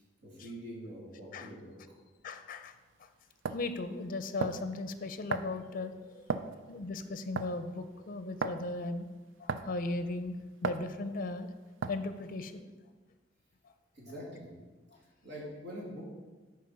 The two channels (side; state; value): both; normal; correlation 0.17